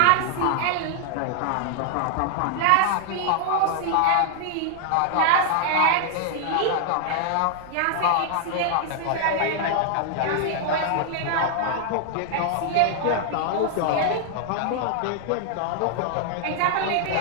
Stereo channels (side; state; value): both; different; correlation -0.01